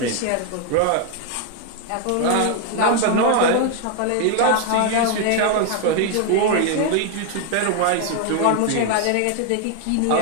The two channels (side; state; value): both; different; correlation 0.00